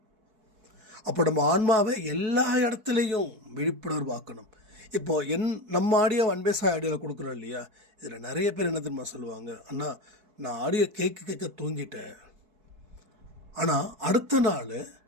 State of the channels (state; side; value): late; left; 4.6 ms